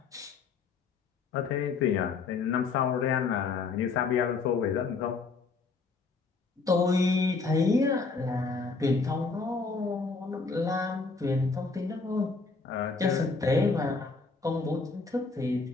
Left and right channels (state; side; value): quieter; right; 4.3 dB